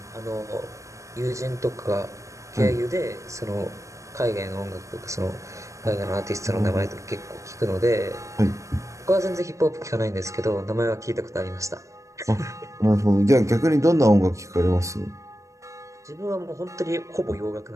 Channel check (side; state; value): left; late; 0.15 ms